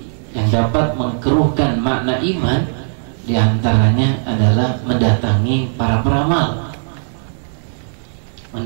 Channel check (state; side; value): silent; left; digital silence